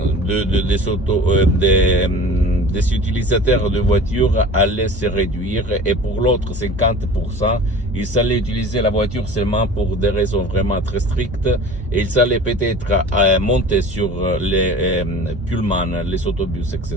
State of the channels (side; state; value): both; normal; correlation 0.40